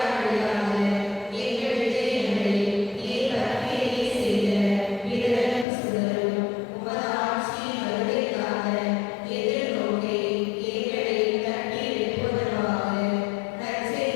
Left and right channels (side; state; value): right; drops out; at 5.7 s